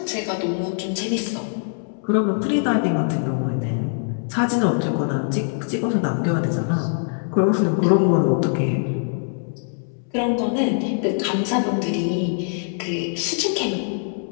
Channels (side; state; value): right; silent; 64 dB below the other